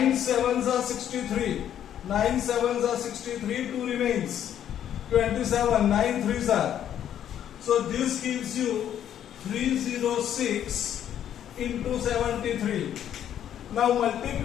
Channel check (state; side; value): quieter; right; 10.2 dB